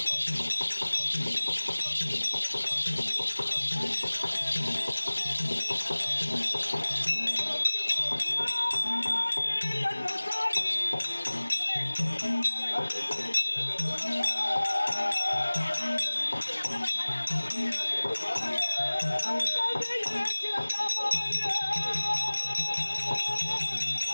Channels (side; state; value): both; inverted; correlation -1.00